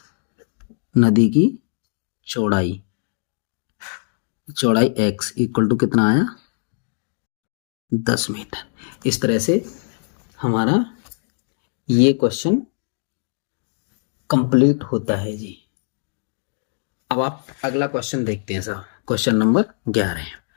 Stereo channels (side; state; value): right; silent; digital silence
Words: x इक्वल टू कितना आया 10 मीटर। इस तरह से हमारा ये क्वेश्चन कंप्लीट होता है जी। अब आप अगला क्वेश्चन देखते हैं साहब, question number 12,